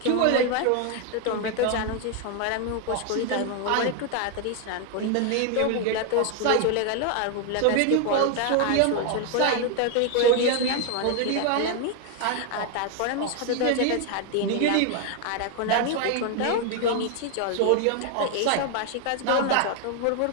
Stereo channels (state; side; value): different; both; correlation 0.01